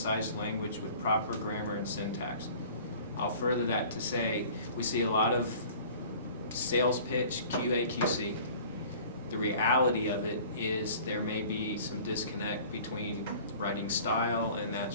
language with proper grammar and syntax? I'll further that to say, we see a lot of sales pitch, QA, QC. The reality of it is there may be some disconnect between writing style and that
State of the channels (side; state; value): both; inverted; correlation -0.47